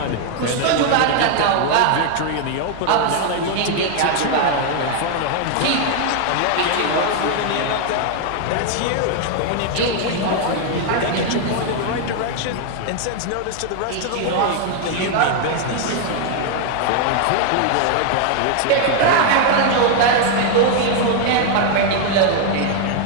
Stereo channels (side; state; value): both; different; correlation 0.00